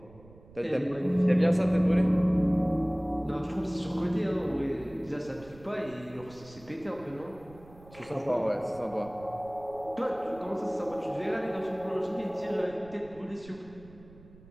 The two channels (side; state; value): right; noise; rumble, 22 dB below the sound